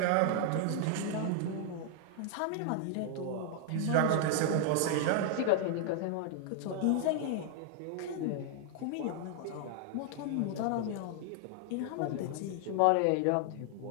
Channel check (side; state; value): both; different; correlation 0.00